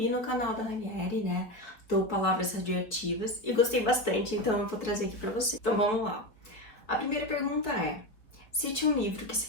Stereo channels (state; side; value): late; right; 4.6 ms